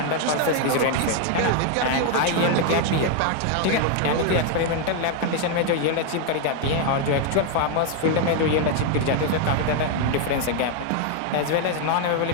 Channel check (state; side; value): different; both; correlation 0.00